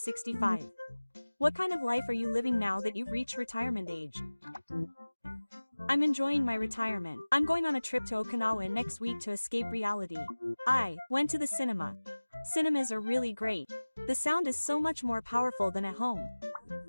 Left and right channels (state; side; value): inverted; both; correlation -1.00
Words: What kind of life are you living now that you've reached retirement age? I'm enjoying my retirement. I'm going on a trip to Okinawa next week to escape reality. I went to the cinema. Cinemas are really great. The sound is so much more powerful than at home.